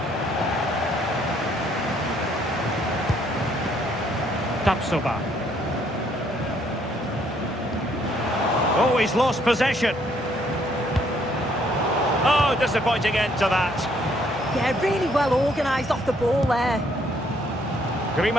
Tapsoba. Oh, he's lost possession. Oh, disappointing end to that. Yeah, really well organised off the ball there.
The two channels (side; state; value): both; normal; correlation 0.67